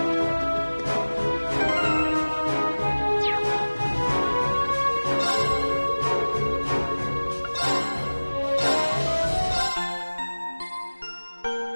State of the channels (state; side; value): inverted; both; correlation -1.00